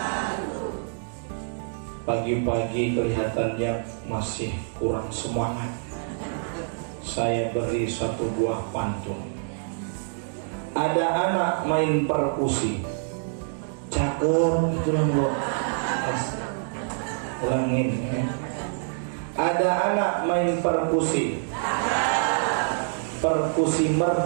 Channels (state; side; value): silent; left; digital silence